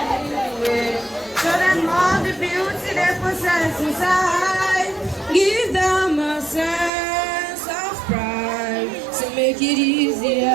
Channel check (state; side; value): drops out; left; at 6.9 s